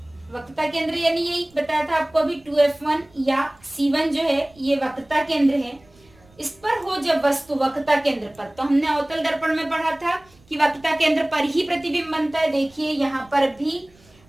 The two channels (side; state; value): right; noise; rumble, 29 dB below the sound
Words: यानी यही बताया था आपको अभी 2f1 या C1 जो है ये वक्रता केंद्र है, इस पर हो जब वस्तु वक्रता केंद्र पर, तो हमने अवतल दर्पण में पढ़ा था कि वक्रता केंद्र पर ही प्रतिबिंब बनता है। देखिए यहाँ पर भी